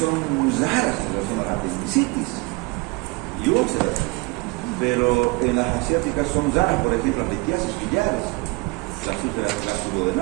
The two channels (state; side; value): quieter; left; 25.6 dB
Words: raras en relación a la apendicitis y úlceras, pero en las asiáticas son raras, por ejemplo, las litiasis biliares, las úlceras